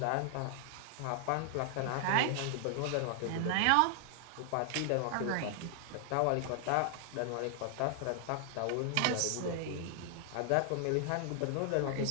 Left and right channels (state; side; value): different; both; correlation 0.00